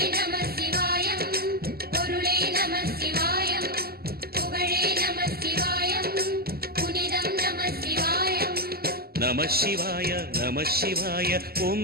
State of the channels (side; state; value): left; late; 0.45 ms